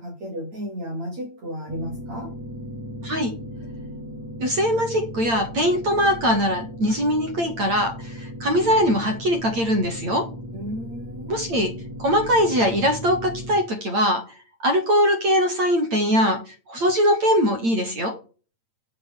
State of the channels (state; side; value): late; left; 8.8 ms